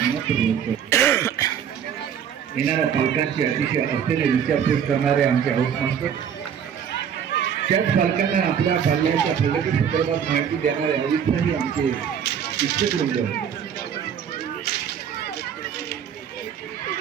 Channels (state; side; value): quieter; left; 8.3 dB